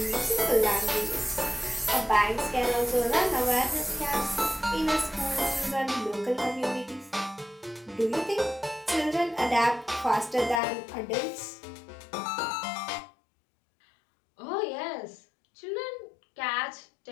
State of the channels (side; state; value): right; drops out; at 10.6 s